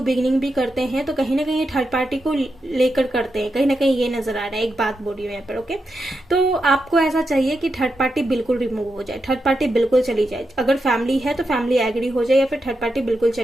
बिगिनिंग भी करते हैं तो कहीं ना कहीं थर्ड पार्टी को लेकर करते हैं, कहीं ना कहीं ये नजर आ रहा है। एक बात बोल रही हूँ यहाँ पर, ओके। तो आपको ऐसा चाहिए कि थर्ड पार्टी बिल्कुल रिमूव हो जाए, थर्ड पार्टी बिल्कुल चली जाए। अगर फैमिली है तो फैमिली एग्री हो जाए या फिर थर्ड पार्टी बिल्कुल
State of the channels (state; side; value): normal; both; correlation 0.86